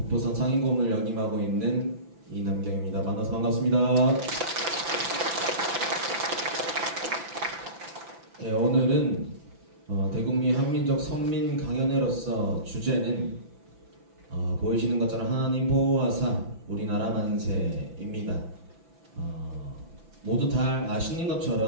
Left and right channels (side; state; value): left; late; 5.9 ms